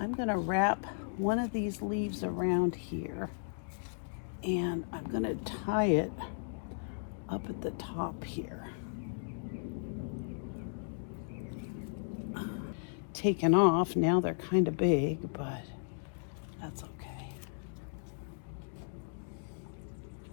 going to wrap one of these leaves around here, and I'm going to tie it up at the top here. Taken off, now they're kind of big, but that's okay.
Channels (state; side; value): silent; right; digital silence